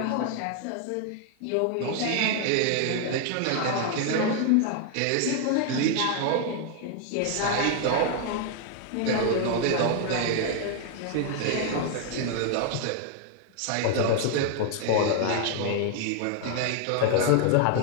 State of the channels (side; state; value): both; different; correlation 0.00